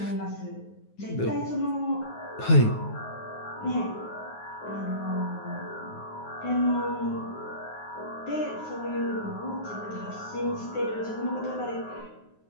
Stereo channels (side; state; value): right; late; 9.5 ms